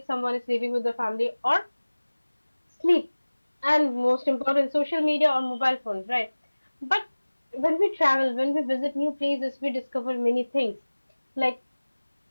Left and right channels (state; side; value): inverted; both; correlation -1.00